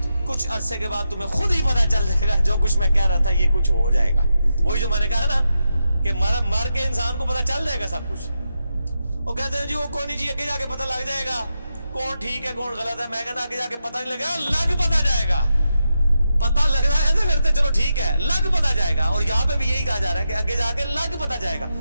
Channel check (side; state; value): both; inverted; correlation -0.87